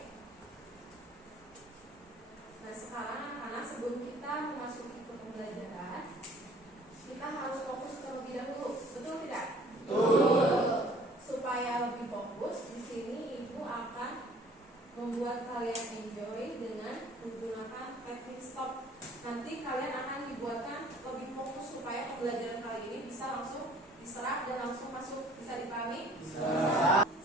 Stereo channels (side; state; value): both; normal; correlation 0.53